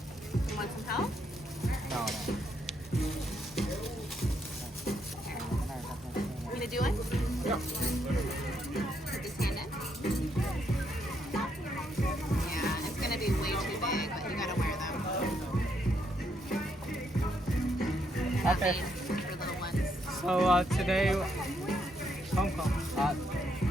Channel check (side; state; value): both; normal; correlation 0.76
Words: You want some help? No. Want me to do it? Yeah. Put this hand in. Yeah, it's gonna be way too big, but you gotta wear them. Okay. For little ones. So today, Hong Kong.